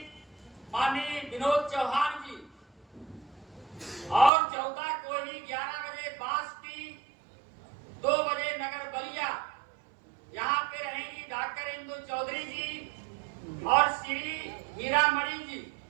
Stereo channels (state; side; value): drops out; left; at 4.3 s